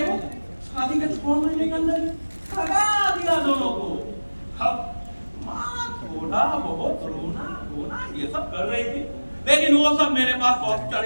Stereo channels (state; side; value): inverted; both; correlation -1.00